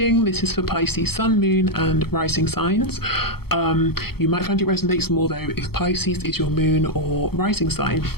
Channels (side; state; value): right; late; 0.95 ms